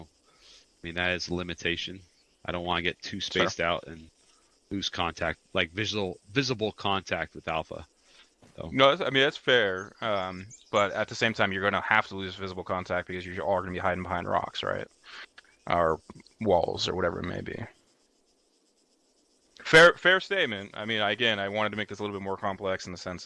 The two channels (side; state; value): both; identical; correlation 1.00